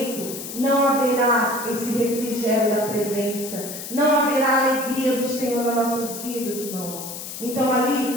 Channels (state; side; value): noise; left; hiss, 9 dB below the sound